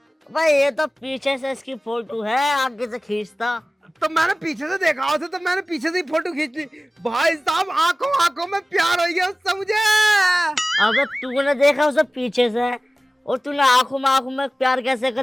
भाई ये तो पीछे से इसकी फोटो है, आगे से खींचता। तो मैंने पीछे से देखा उसे, तो मैंने पीछे से ही फोटो खींच ली। भाई साहब आंखों आंखों में प्यार हो गया उससे मुझे। अबे तूने देखा उसे पीछे से और तूने आंखों में प्यार कैसे कर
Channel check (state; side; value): normal; both; correlation 0.97